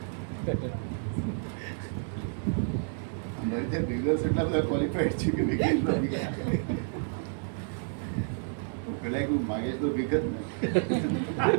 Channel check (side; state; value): left; silent; 58 dB below the other